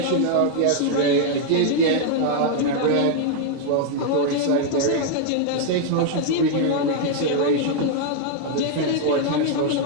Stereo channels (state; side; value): different; both; correlation 0.00